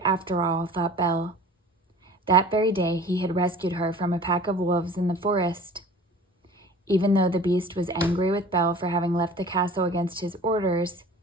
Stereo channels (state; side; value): normal; both; correlation 0.43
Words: after all, thought Belle. That very day he had rescued her from a pack of wolves in the forest. Even though the beast was angry with Belle for having left the castle against his orders,